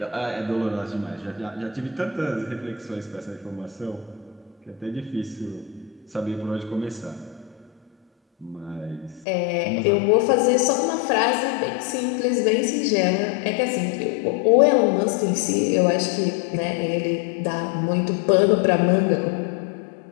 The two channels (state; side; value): drops out; right; at 9.2 s